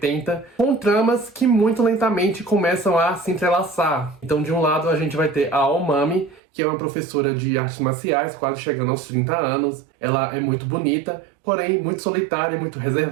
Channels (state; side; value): drops out; left; at 6.4 s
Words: com tramas que muito lentamente começam a se entrelaçar. Então de um lado a gente vai ter a Aomami, que é uma professora de artes marciais, quase chegando aos 30 anos. Ela é muito bonita, porém muito solitária e muito